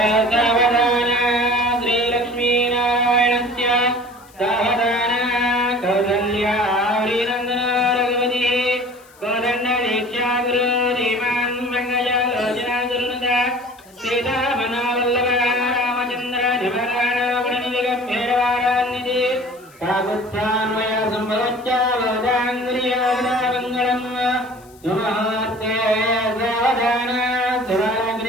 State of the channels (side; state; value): left; noise; hiss, 27 dB below the sound